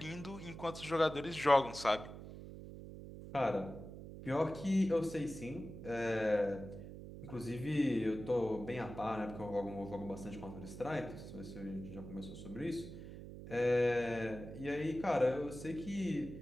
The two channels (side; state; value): right; noise; hum, 12 dB below the sound